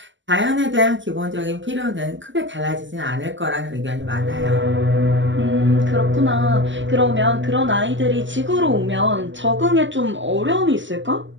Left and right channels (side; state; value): left; late; 0.54 ms